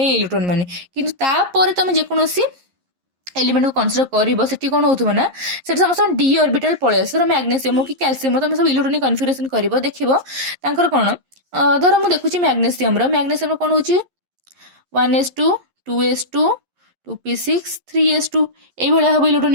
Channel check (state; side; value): late; left; 11 ms